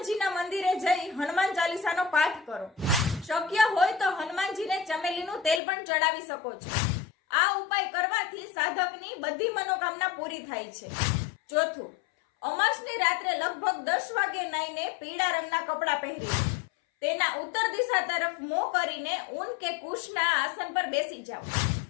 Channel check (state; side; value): drops out; right; at 5.6 s